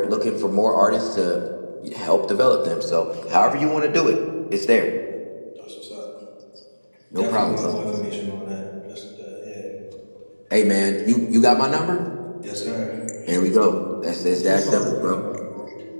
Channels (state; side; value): inverted; both; correlation -1.00